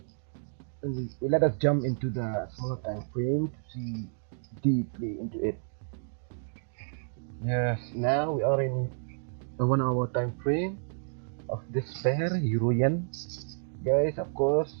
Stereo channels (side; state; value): left; silent; digital silence